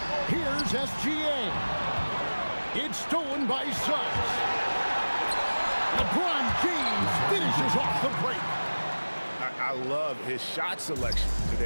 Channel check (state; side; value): inverted; both; correlation -1.00